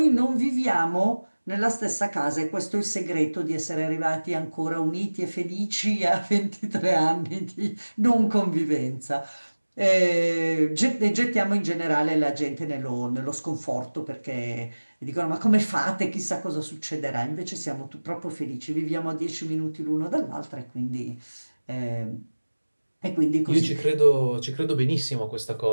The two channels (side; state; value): both; inverted; correlation -1.00